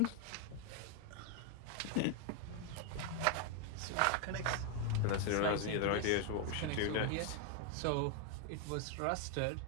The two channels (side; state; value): both; different; correlation 0.01